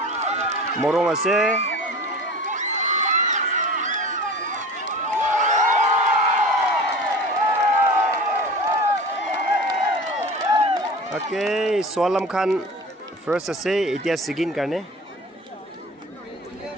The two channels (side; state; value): both; normal; correlation 0.37